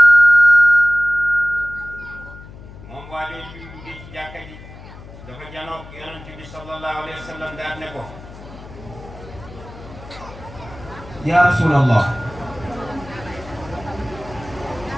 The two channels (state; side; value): noise; left; hum, 17 dB below the sound